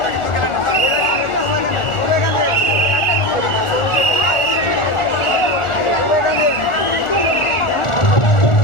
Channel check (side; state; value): right; late; 1.4 ms